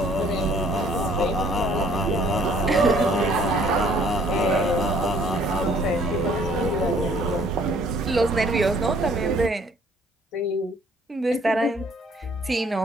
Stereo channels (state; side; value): normal; both; correlation 0.60